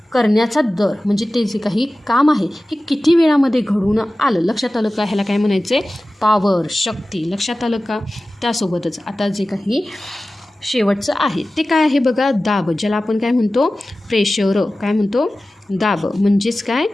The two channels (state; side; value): normal; both; correlation 0.96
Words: करण्याचा दर म्हणजे ते जे काही काम आहे हे किती वेळामध्ये घडून आलं? लक्षात आलं का? ह्याला काय म्हणायचं आहे? पॉवर. शक्ती. लक्षात आलं का? त्यासोबतच आता जे काही शेवटचं आहे ते काय आहे बघा? दाब. ज्याला आपण काय म्हणतो? प्रेशर. काय म्हणतो? दाब म्हणजेच काय?